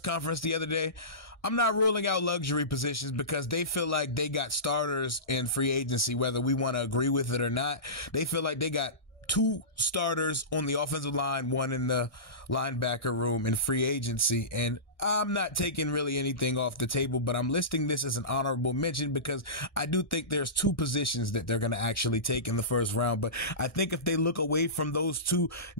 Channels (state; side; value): late; right; 1.6 ms